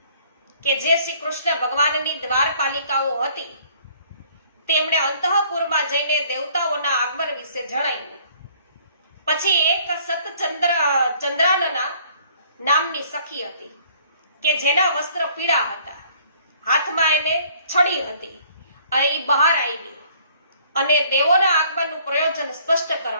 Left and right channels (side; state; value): both; inverted; correlation -0.58